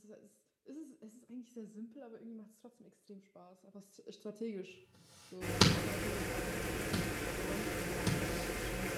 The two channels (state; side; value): identical; both; correlation 1.00